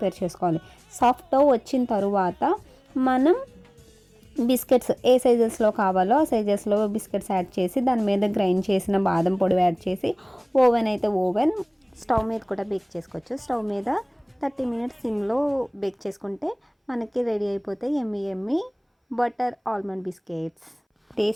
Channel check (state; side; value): identical; both; correlation 1.00